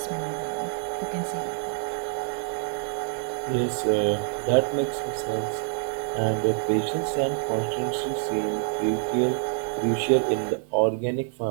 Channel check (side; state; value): left; silent; digital silence